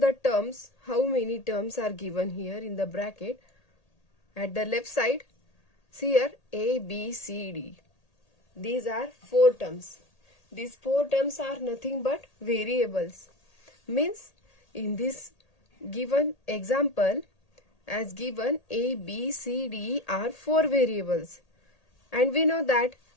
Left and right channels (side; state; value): right; late; 1.8 ms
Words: terms, how many terms are given here in the bracket. At the left side, see here A, B, C, D. These are 4 terms. These 4 terms are nothing but variables. Means in this given example, as given A, B, C, D are 4 variables. And we know that